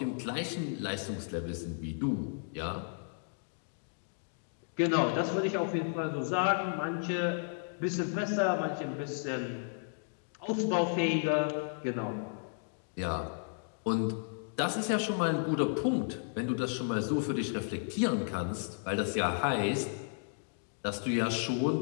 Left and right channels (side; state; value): right; silent; digital silence